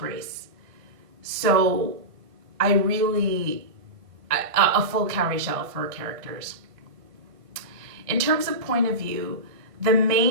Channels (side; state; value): left; late; 1.5 ms